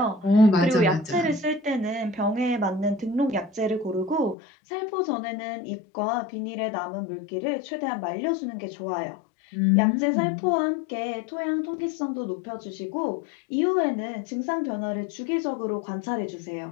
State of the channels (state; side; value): drops out; right; at 4.4 s